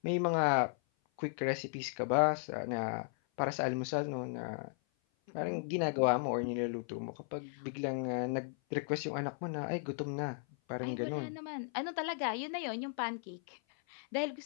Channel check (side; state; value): right; silent; 54 dB below the other